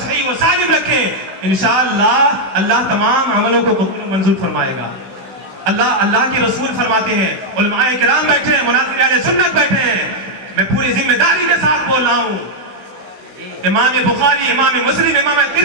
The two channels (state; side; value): late; left; 16 ms